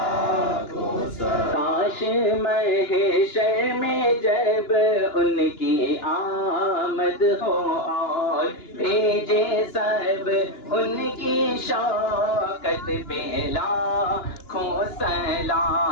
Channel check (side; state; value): right; late; 2.9 ms